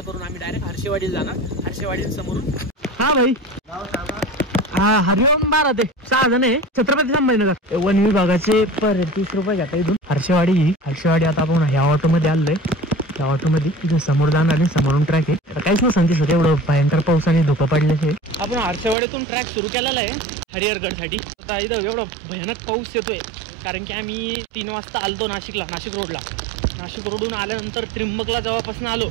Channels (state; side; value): drops out; left; at 18.9 s